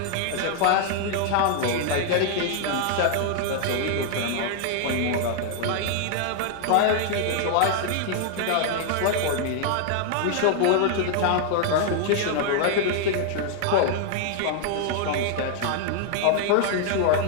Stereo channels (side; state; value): both; different; correlation 0.00